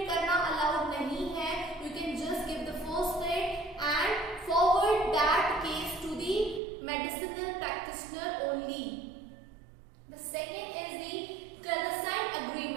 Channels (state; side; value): drops out; left; at 6.6 s